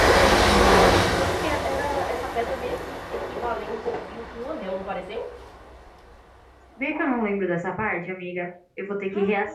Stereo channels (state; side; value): identical; both; correlation 1.00